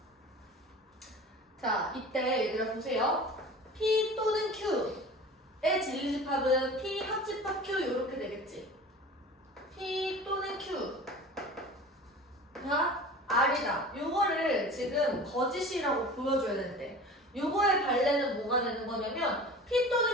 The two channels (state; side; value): normal; both; correlation 0.38